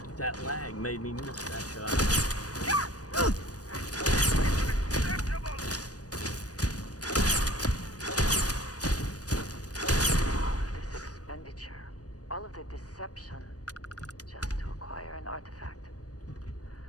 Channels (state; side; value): late; right; 0.68 ms